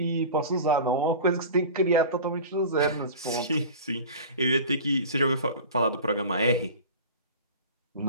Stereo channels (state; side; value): inverted; both; correlation -0.36